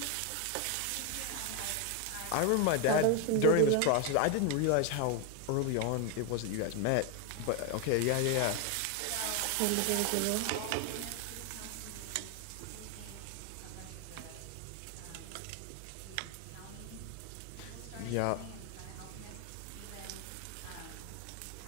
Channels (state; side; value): different; both; correlation 0.01